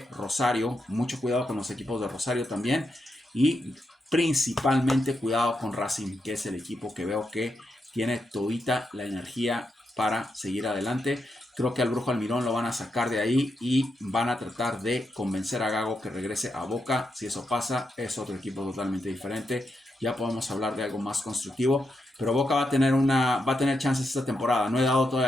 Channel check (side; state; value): both; normal; correlation 0.84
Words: Rosario, mucho cuidado con los equipos de Rosario también. Y principalmente cuidado con Racing, que es el equipo que veo que tiene todita la energía para seguir adelante. Creo que al Brujo Almirón lo van a sacar de ahí y van a tratar de convencer a Gago que regrese a Boca. Si eso pasa, es otro equipo totalmente diferente. Ya podemos hablar de algo más constructivo. Pero Boca va a tener chances esta temporada. No he dado todavía